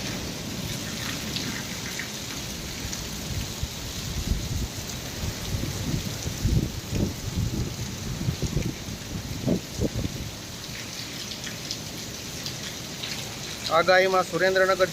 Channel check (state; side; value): identical; both; correlation 1.00